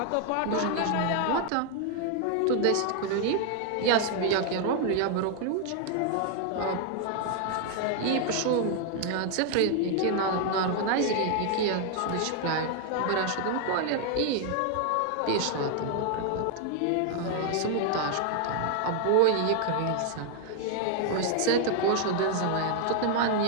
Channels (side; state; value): both; different; correlation 0.00